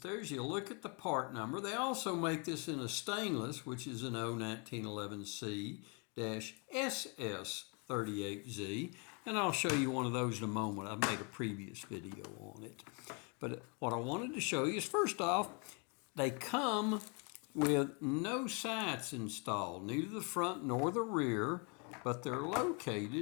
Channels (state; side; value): quieter; right; 34.1 dB